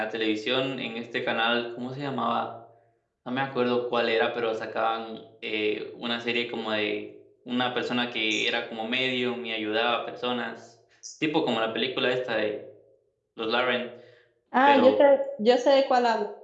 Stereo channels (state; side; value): identical; both; correlation 1.00